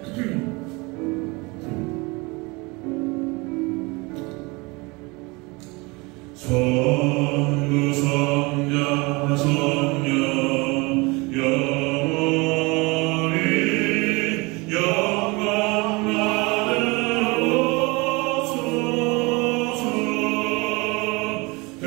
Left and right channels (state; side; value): quieter; left; 25.9 dB